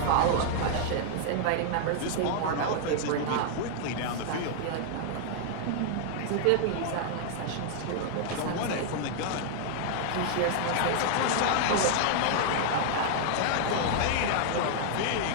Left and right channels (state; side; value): different; both; correlation -0.01